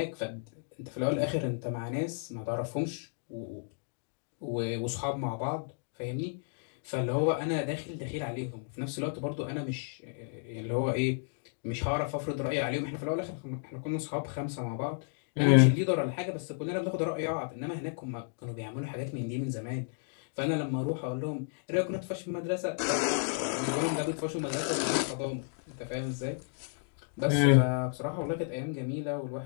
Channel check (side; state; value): right; silent; digital silence